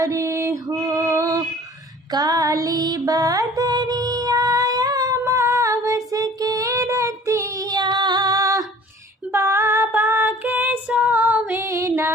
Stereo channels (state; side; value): normal; both; correlation 0.48